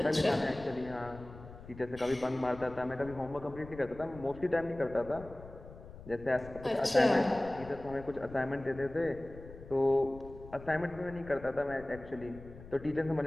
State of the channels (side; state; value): left; noise; rumble, 16 dB below the sound